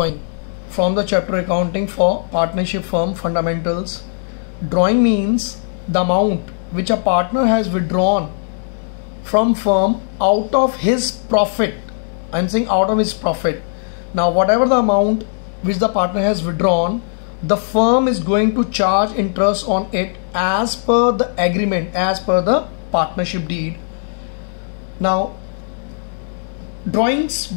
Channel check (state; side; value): silent; right; digital silence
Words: from the chapter accounting for partnership firm fundamentals. Drawing means the amount which a partner has withdrawn from firm out of his profit. I'm saying out of his profit. Now whatever the amount which the partner has withdrawn, the firm is going to charge interest on it as per the agreement, as per the partnership deed. Now, drawings